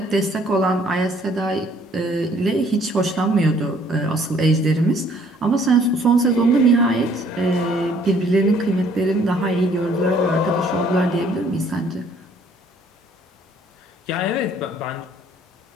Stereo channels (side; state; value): both; normal; correlation 0.60